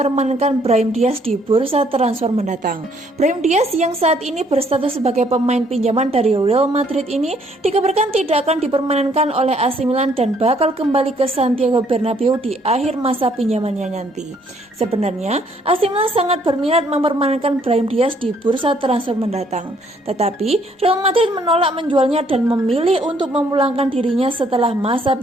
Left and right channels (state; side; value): normal; both; correlation 0.66